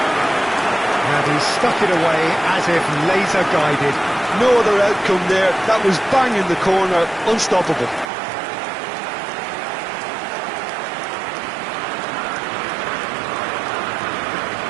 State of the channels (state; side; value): drops out; left; at 8.1 s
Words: And he stuck it away as if laser guided. No other outcome there. That was bang in the corner, unstoppable.